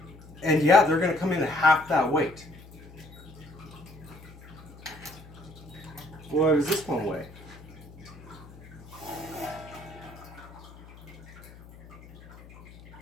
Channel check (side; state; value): left; noise; hum, 19 dB below the sound